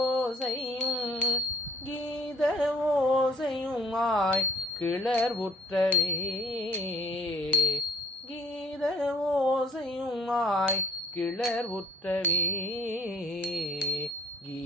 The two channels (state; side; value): normal; both; correlation 0.54